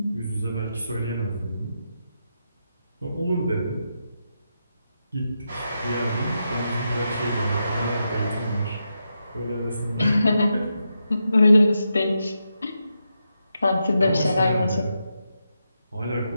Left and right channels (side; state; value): both; inverted; correlation -0.86